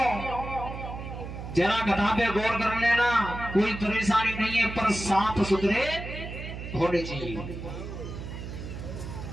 जरा कथा पे गौर कर लेना, कोई परेशानी नहीं है, पर साफ सुथरे होने चाहिए।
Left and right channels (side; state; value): right; noise; hum, 8 dB below the sound